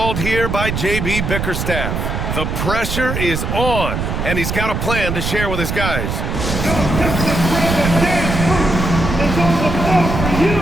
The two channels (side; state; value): right; noise; rumble, 2 dB below the sound